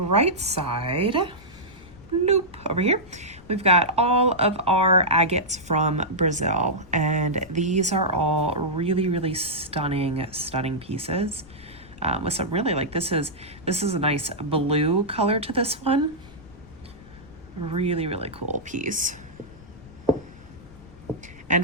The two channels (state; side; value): noise; left; rumble, 20 dB below the sound